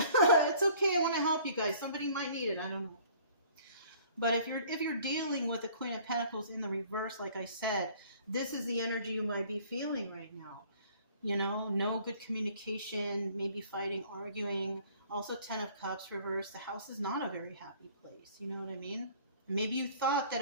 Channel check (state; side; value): inverted; both; correlation -0.53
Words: okay. I want to help you guys. Somebody might need it. I don't know. But if you're dealing with the Queen of Pentacles in the reverse, like I said, this is the energy you might be feeling right now. You know, no good communication, maybe fighting, arguing. Also, Ten of Cups reverse. The house is not a very happy place. You know what I mean? Maybe you thought that